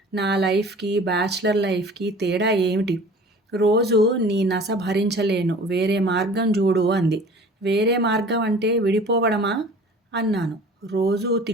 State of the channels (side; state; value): both; normal; correlation 0.45